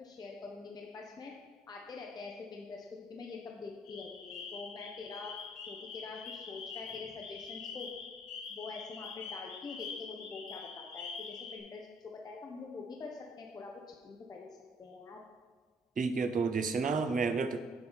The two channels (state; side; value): normal; both; correlation 0.64